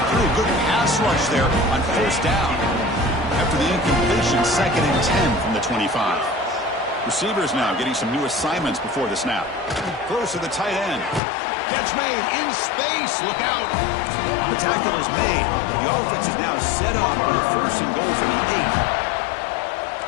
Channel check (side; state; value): right; drops out; at 11.2 s